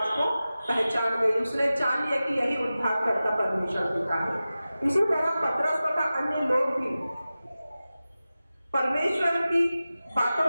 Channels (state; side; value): inverted; both; correlation -0.95